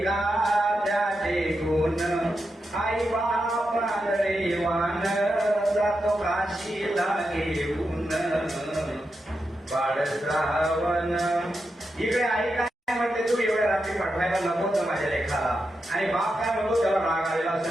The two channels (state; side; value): normal; both; correlation 0.87